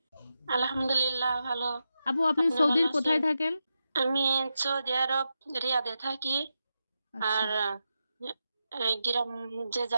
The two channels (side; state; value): both; inverted; correlation -0.88